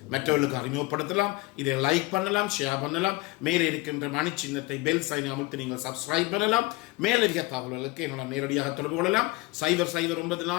மற்றவர்களுக்கு அறிமுகப்படுத்தலாம், இதை லைக் பண்ணலாம், ஷேர் பண்ணலாம். மேலே இருக்கின்ற மணி சின்னத்தை பெல் சைனை அமுத்தி நீங்கள் சப்ஸ்கிரைப் பண்ணலாம். மேலதிக தகவல்களுக்கு என்னோட நேரடியாக தொடர்பு கொள்ளலாம்.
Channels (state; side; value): quieter; right; 22.6 dB